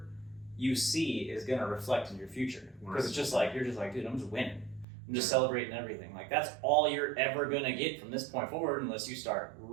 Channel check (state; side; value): drops out; left; at 4.9 s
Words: you see is gonna reflect in your future. Because it's just like, you're just like, dude, I'm just winning. I'm just celebrating everything. Like that's all you're ever gonna get from this point forward, unless you start